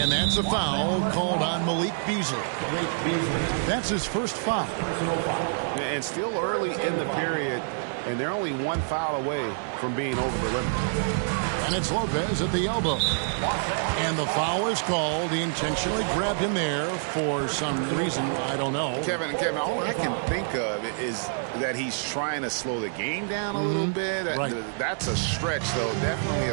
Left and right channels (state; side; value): silent; left; digital silence